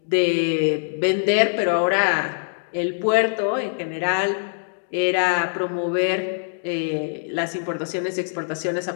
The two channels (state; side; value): silent; right; digital silence